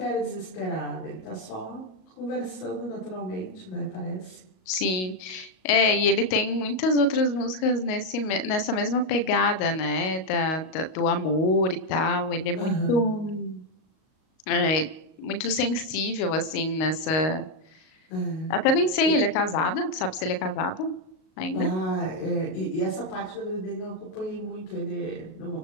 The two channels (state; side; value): late; right; 38 ms